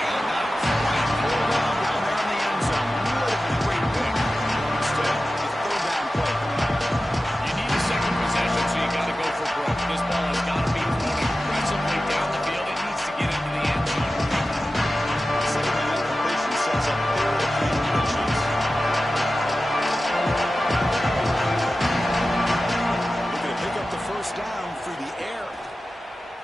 quite pull down there in the end zone. Would have been a great pick. Instead, the third down play. You need a second possession, so you got to go for broke. This ball has got to be thrown aggressively down the field. It needs to get into the end zone. Second down completion sets up third and inches. Looking to pick up the first down through the air.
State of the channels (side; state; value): both; normal; correlation 0.94